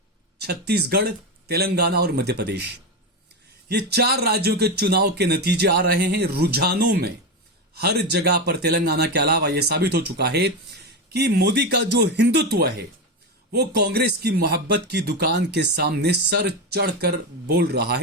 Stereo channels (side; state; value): both; normal; correlation 0.15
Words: छत्तीसगढ़, तेलंगाना और मध्य प्रदेश, ये 4 राज्यों के चुनाव के नतीजे आ रहे हैं। रुझानों में हर जगह पर तेलंगाना के अलावा यह साबित हो चुका है कि मोदी का जो हिंदुत्व है वो कांग्रेस की मोहब्बत की दुकान के सामने सर चढ़कर बोल रहा